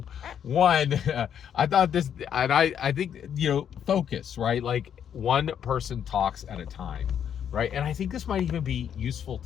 one, I thought this, and I think, you know, focus, right? Like, one person talks at a time, right? And I think this might even be useful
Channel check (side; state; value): right; quieter; 8.8 dB